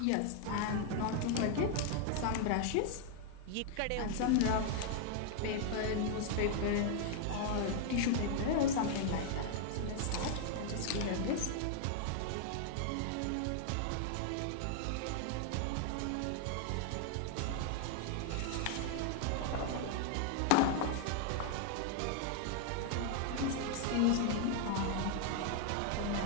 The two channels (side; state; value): both; different; correlation 0.00